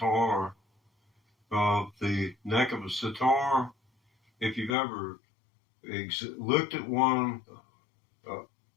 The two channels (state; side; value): drops out; right; at 4.8 s